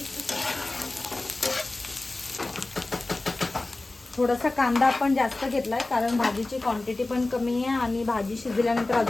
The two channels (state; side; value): quieter; right; 3.0 dB